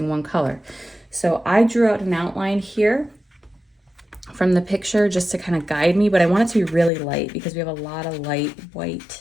one color. So I drew out an outline here from the picture just to kind of guide me, but I want it to be really light because we have a lot of light white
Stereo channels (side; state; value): right; drops out; at 6.9 s